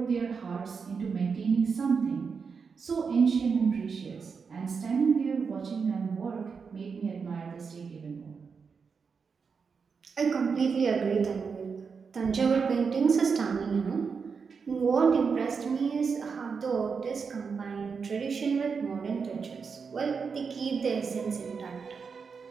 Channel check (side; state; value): left; quieter; 5.6 dB